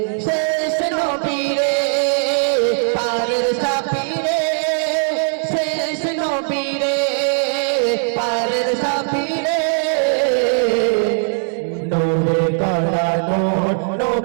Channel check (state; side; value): silent; left; 67 dB below the other